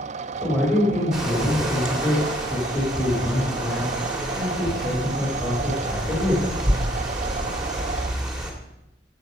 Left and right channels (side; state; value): both; normal; correlation 0.65